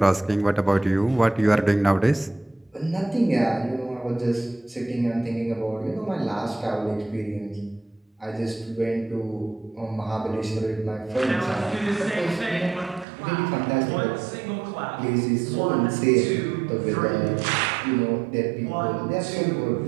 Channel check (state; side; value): drops out; left; at 13.1 s